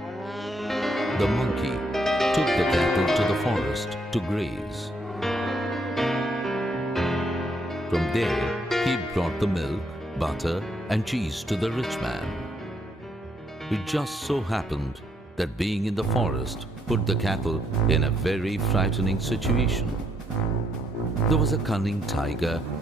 the monkey took the cattle to the forest to graze. From there, he brought the milk, butter and cheese to the rich man. It just so happened that being in the forest put the cattle in a very frightening situation. There was a cunning tiger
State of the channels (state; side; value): normal; both; correlation 0.73